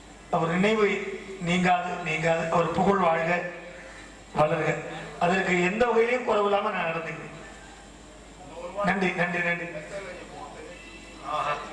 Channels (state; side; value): identical; both; correlation 1.00